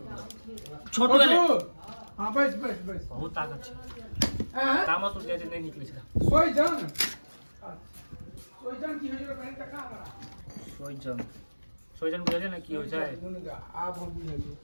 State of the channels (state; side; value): inverted; both; correlation -1.00